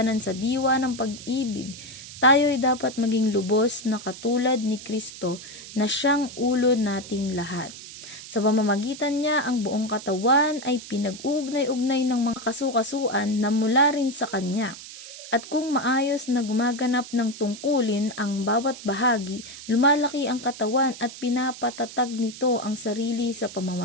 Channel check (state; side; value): noise; right; hiss, 14 dB below the sound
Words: sa diwa ng pag-ibig, tayo ay dapat maging lubos na katulad ni Kristo na siyang ulo nating lahat. Sa pamamagitan niya, ang buong katawan ay pinag-ugnay-ugnay ng mga kasukasuan na mula rin sa Kanya. At kung maayos na gumaganap ng tungkulin ang bawat bahagi, lumalaki ang katawan at pinapatatag nito ang sarili sa